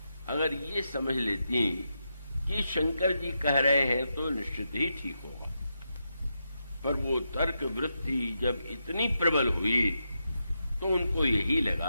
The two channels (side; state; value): both; inverted; correlation -0.85